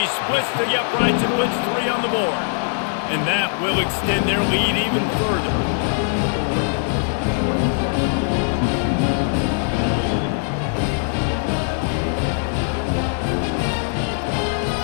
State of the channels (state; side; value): silent; right; 65 dB below the other